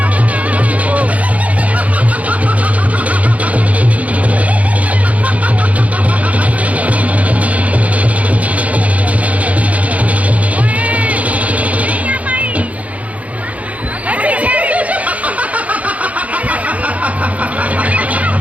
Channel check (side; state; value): left; late; 0.068 ms